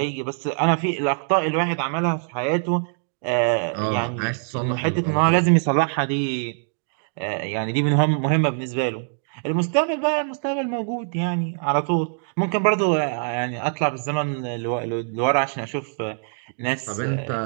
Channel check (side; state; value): left; silent; digital silence